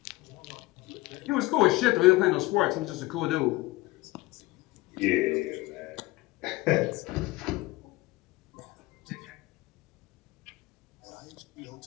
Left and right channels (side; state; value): right; quieter; 19.8 dB